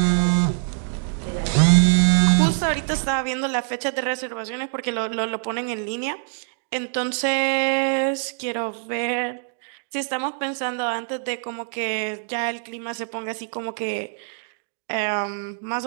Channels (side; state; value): left; silent; digital silence